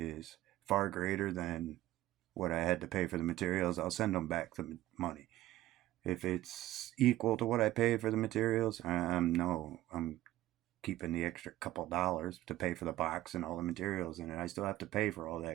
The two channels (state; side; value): quieter; left; 15.2 dB